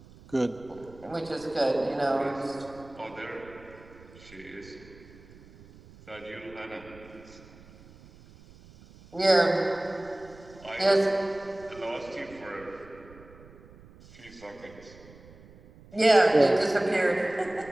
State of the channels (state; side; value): noise; right; rumble, 22 dB below the sound